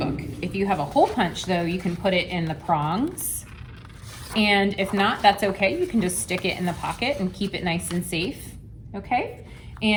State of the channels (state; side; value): identical; both; correlation 1.00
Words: If you have a hole punch though, you can put it in the prongs. And if not, that's okay. You can just stick it in the pocket and keep it nice and safe, okay?